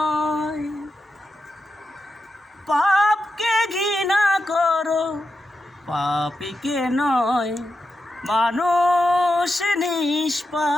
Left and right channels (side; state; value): both; normal; correlation 0.88